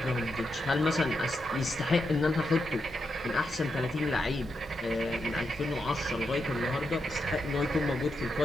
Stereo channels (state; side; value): normal; both; correlation 0.84